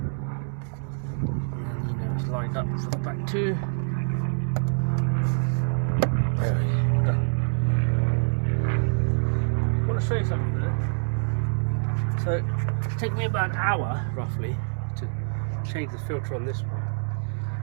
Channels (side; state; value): left; silent; 61 dB below the other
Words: then you know it's lined up for the back too. There we go, done. I want to show you something here. So it's taken me about an hour roughly to change the filter on this one.